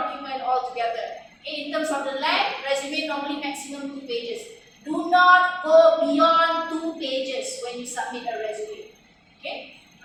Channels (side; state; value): both; identical; correlation 1.00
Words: altogether. Okay, in terms of the length, resume normally maximum 2 pages. Do not go beyond 2 pages when you submit a resume. Okay,